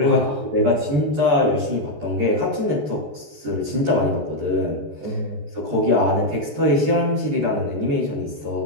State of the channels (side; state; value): left; late; 13 ms